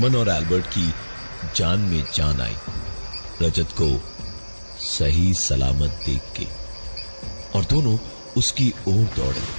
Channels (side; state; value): both; inverted; correlation -1.00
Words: और एल्बर्ट की जान में जान आई रजत को सही सलामत देख के, और दोनों उसकी ओर दौड़े।